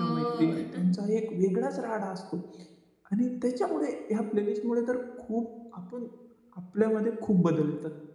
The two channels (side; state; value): both; identical; correlation 1.00